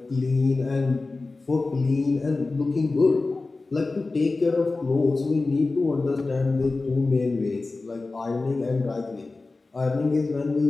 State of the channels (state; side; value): quieter; right; 3.5 dB